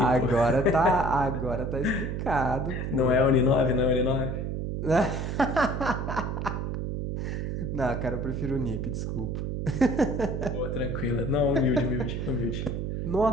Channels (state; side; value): noise; right; hum, 3 dB below the sound